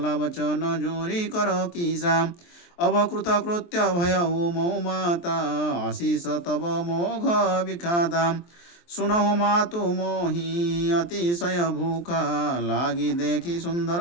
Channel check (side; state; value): right; late; 23 ms